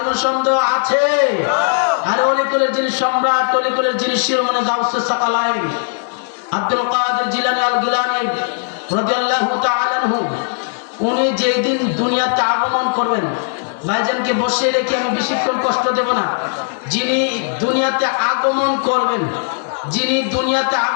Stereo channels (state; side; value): silent; right; digital silence